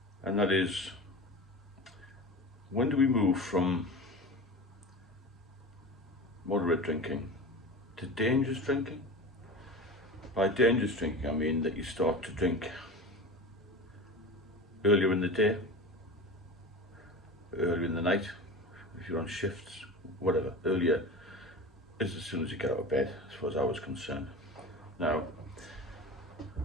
and that is, when do we move from moderate drinking to dangerous drinking? By dangerous drinking I mean that you start to drink earlier in the day, earlier in the night, if you're on shifts, whatever. Earlier is as soon as you get out of bed, as far as I was concerned. Now,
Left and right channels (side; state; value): both; normal; correlation 0.31